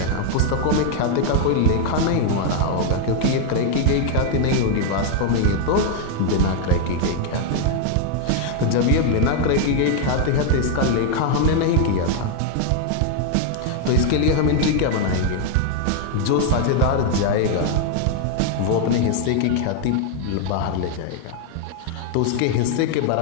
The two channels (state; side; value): different; both; correlation 0.00